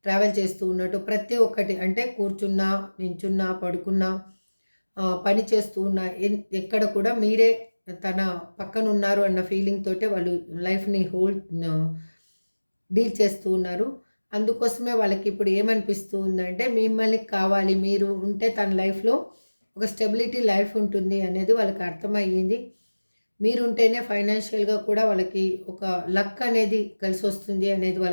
ట్రావెల్ చేస్తూ ఉన్నట్టు, ప్రతి ఒక్కటి అంటే కూర్చున్నా, నించున్నా, పడుకున్నా, పని చేస్తూ ఉన్నా, ఎక్కడ కూడా మీరే తన పక్కన ఉన్నారు అన్న ఫీలింగ్ తోటే వాళ్ళు లైఫ్ని డీల్ చేస్తూ ఉన్నారు. అందుకోసమే వాళ్ళకి ఇప్పుడు ఏమనిపిస్తూ ఉందంటే మిమ్మల్ని కావాలి, మీరు ఉంటే తన లైఫ్లో ఒక స్టెబిలిటీ లైఫ్ ఉంటుంది అనేది వాళ్ళకి అర్థమయ్యింది. మీరుంటేనే ఫైనాన్షియల్గా కూడా వాళ్ళకి ఒక లక్ అనేది కలిసి వస్తుంది అనేది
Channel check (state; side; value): inverted; both; correlation -1.00